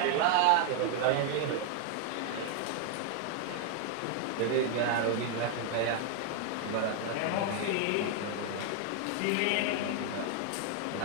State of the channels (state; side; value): different; both; correlation 0.00